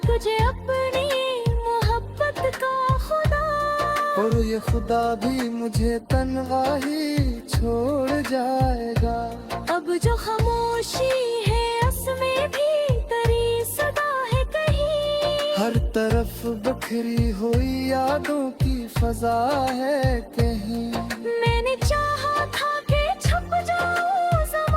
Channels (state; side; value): identical; both; correlation 1.00